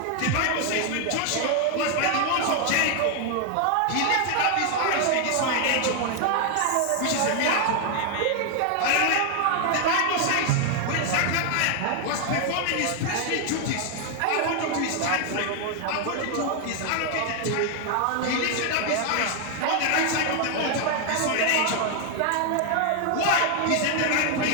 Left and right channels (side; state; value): both; different; correlation 0.00